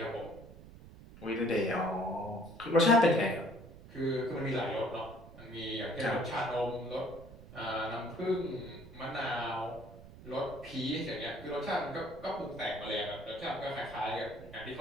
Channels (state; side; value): noise; right; rumble, 17 dB below the sound